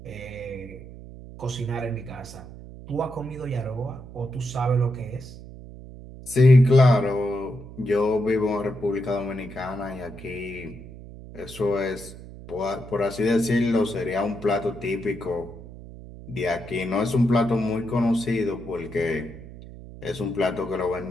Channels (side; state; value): right; noise; hum, 15 dB below the sound